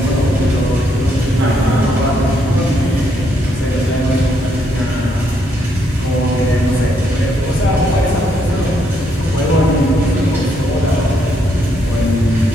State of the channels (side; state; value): both; normal; correlation 0.74